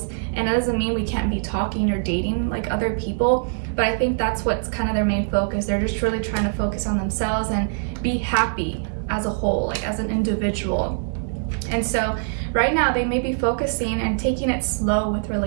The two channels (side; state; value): left; silent; digital silence